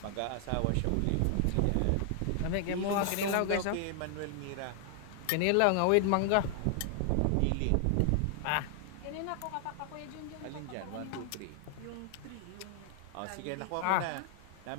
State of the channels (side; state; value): both; different; correlation 0.00